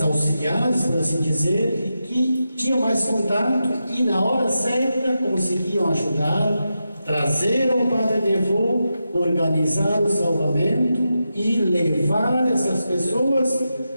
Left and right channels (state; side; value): inverted; both; correlation -0.89